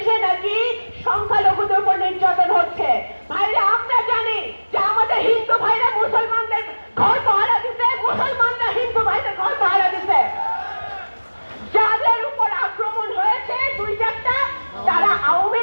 নাকি সংখ্যালঘুদের উপর নির্যাতন হচ্ছে। ভাইরা, আমরা জানি যে আমাদের হিন্দু ভাইরা মুসলমানদের ঘর পাহারা দিতে, মুসলমানরা হিন্দু ভাইদের ঘর পাহারা দিতে। যাদের উপর আক্রমণ হয়েছে 2-4টা, তারা আওয়ামী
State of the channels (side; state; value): both; inverted; correlation -1.00